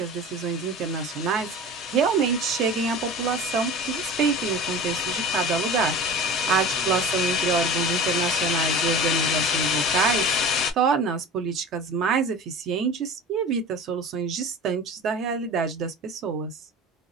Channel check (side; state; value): both; normal; correlation 0.36